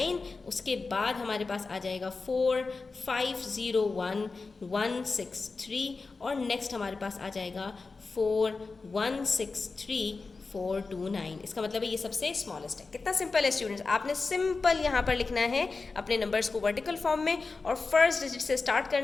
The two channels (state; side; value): quieter; right; 4.1 dB